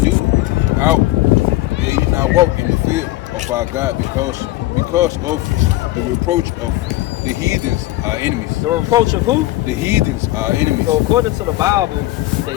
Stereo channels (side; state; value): right; quieter; 17.4 dB